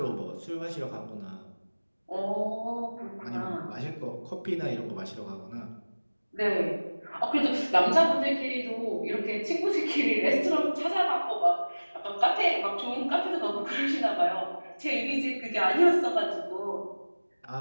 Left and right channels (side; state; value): both; inverted; correlation -1.00